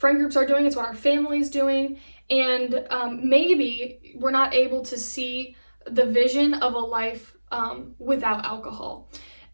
groups are doing. It's what our family's doing. And maybe we're not able to see the vision of a life without alcohol.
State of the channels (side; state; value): both; inverted; correlation -1.00